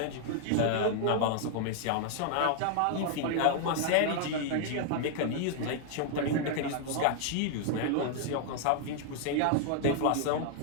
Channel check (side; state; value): both; different; correlation 0.00